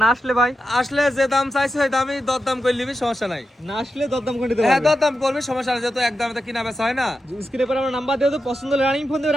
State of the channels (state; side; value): normal; both; correlation 0.89